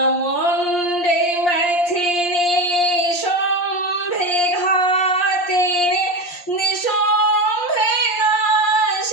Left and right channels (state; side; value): late; right; 5.7 ms